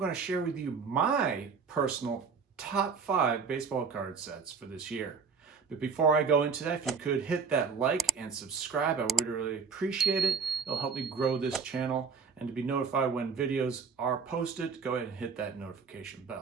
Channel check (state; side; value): quieter; left; 5.6 dB